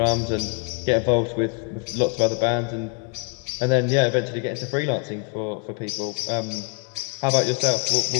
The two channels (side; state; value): right; quieter; 31.5 dB